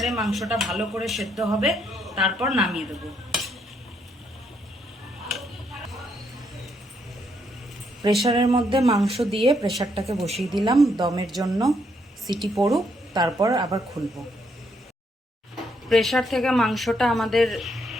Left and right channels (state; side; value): normal; both; correlation 0.74